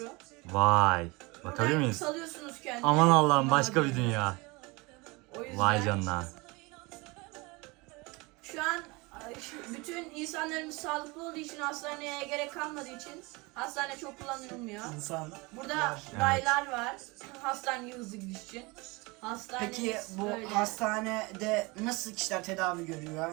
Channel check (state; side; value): quieter; left; 25.4 dB